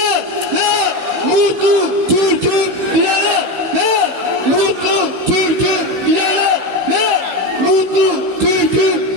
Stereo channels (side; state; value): left; late; 16 ms